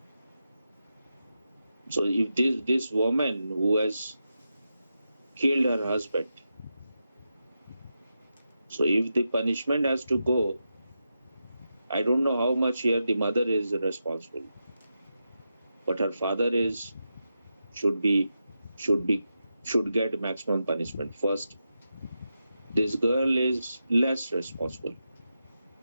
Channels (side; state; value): both; inverted; correlation -0.88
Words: So if this woman who has killed her husband, so if the punishment has to go, I don't know how much here the mother is responsible, but her father should be should be should get maximum punishment. First, this girl is less responsible.